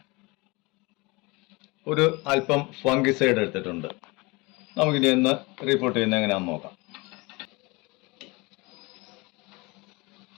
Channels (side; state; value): right; quieter; 25.2 dB